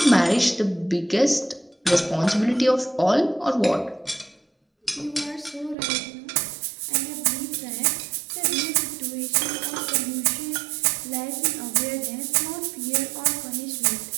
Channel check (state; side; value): drops out; left; at 5.8 s